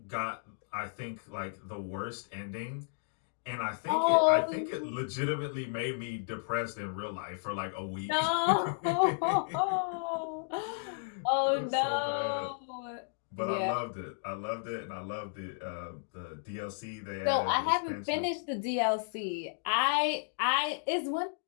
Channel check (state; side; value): silent; right; digital silence